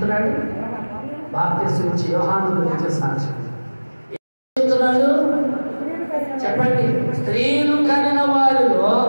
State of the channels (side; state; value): both; inverted; correlation -1.00